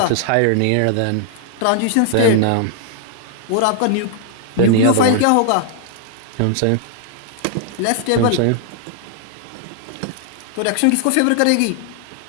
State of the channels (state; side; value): different; both; correlation 0.00